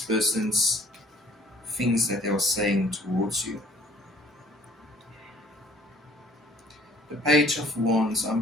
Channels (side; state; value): both; normal; correlation 0.56